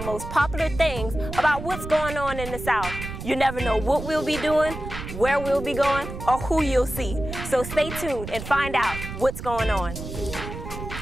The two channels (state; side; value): noise; right; rumble, 9 dB below the sound